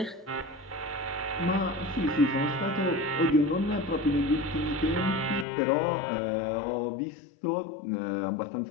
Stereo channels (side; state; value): right; drops out; at 5.5 s